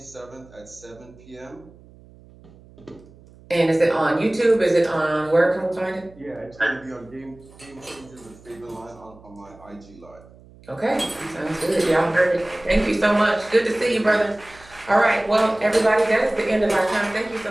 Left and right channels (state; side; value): noise; right; hum, 24 dB below the sound